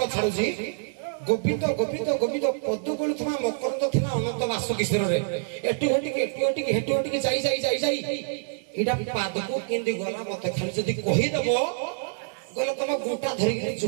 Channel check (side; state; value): left; silent; digital silence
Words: छाडू जी गोविंद गोविंद गोविंद पदु बोलुथमा मकरंद थिला अनंत वासुकेश्वर रे एटू हेटू जाई इडा पादको केंदी गला मते खाली जदी कहि दबो गला तम गुटा धरि के